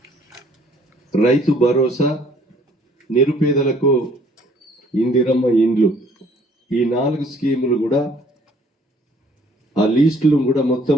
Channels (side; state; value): both; normal; correlation 0.60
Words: రైతు భరోసా, నిరుపేదలకు ఇందిరమ్మ ఇండ్లు, ఈ 4 స్కీములు కూడా ఆ లిస్టులు కూడా